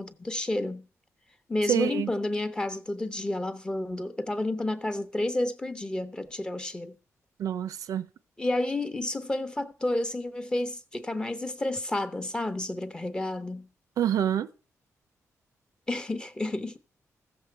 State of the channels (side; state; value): both; normal; correlation 0.79